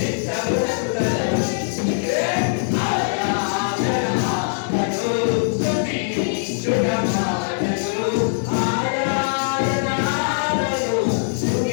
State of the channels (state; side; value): silent; right; digital silence